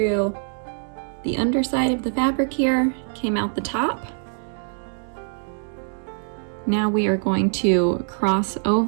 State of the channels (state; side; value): silent; left; 63 dB below the other